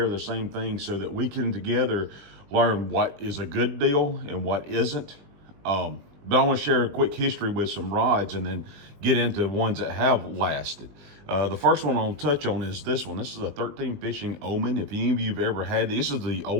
the same thing so that we can together learn what is a good deal and what isn't. But I want to share a quick history with some rods and then get into ones that have lasted. The first one I'll touch on is this one. This is a 13 Fishing Omen. If any of you have ever had this is the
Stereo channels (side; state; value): left; late; 20 ms